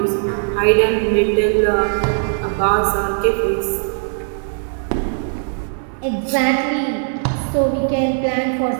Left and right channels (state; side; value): silent; left; 67 dB below the other